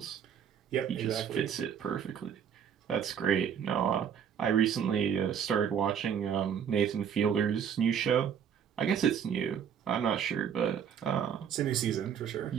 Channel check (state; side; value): quieter; left; 8.0 dB